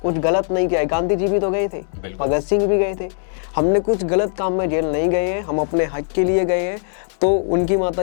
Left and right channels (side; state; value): right; silent; digital silence